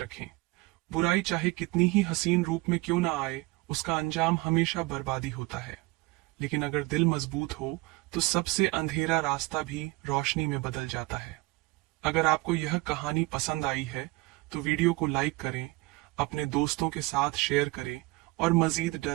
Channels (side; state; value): left; quieter; 22.8 dB